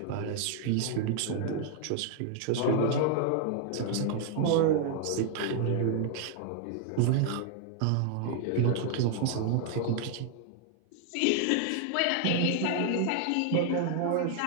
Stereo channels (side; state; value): both; different; correlation 0.00